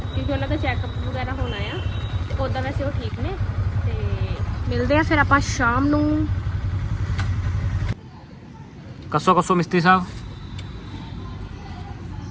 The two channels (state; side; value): identical; both; correlation 1.00